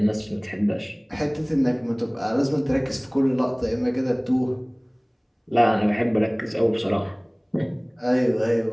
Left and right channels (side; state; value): both; identical; correlation 1.00